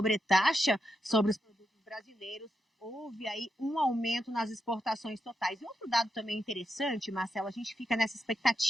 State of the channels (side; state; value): both; normal; correlation 0.85